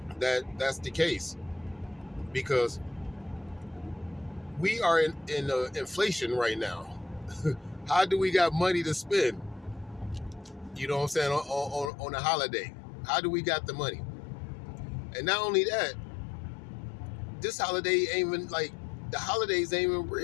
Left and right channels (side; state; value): right; drops out; at 11.9 s